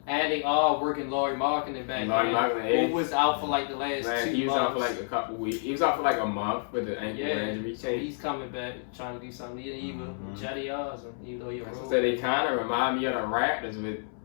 And they are working Laurie Markkinen back Laurie in, Markkinen, who was out for like the last Man, 2 he was months. out for like a couple weeks. He was out for like a month with the ankle injury. So he's coming back trying to do something. Even Jetty Osmond, even though you're So they kind of remind me of the Raptors with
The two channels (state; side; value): silent; right; 58 dB below the other